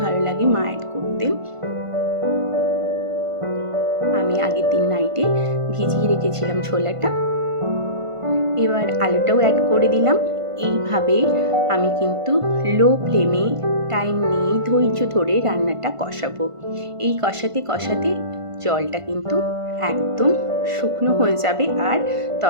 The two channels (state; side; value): late; left; 1.5 ms